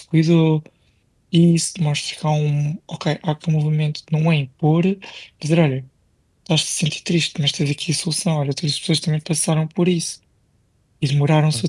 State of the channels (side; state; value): both; identical; correlation 1.00